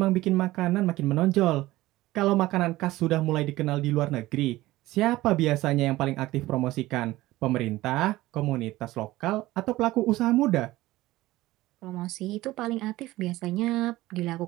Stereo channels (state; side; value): quieter; left; 17.5 dB